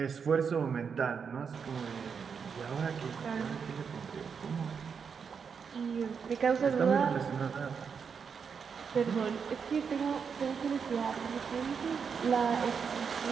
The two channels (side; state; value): left; quieter; 6.3 dB